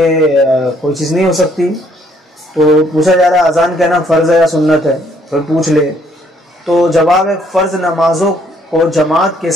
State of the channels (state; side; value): normal; both; correlation 0.66